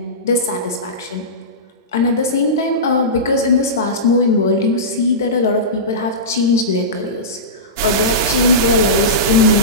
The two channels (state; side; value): normal; both; correlation -0.18